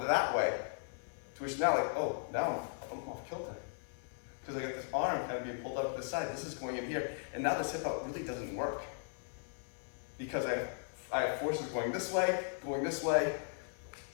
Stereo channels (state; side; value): silent; right; digital silence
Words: that way. To which now like, oh, now I'm off kilter. Because I got this arm kind of being pulled up to the side. This is going in here. And now this hip out really doesn't work. Because I have forces going this way,